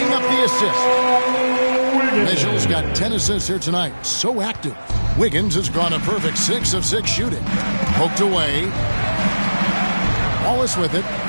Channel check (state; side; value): inverted; both; correlation -1.00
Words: up the assist. Mitchell's got 10 assists here tonight. So active. Wiggins has gone a perfect 6 of 6 shooting. Poked away. Wallace with it.